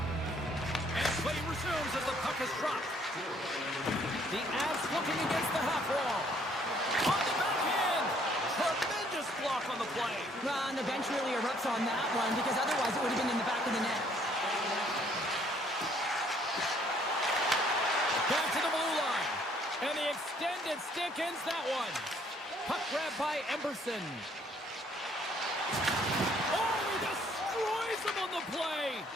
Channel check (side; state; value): both; normal; correlation 0.64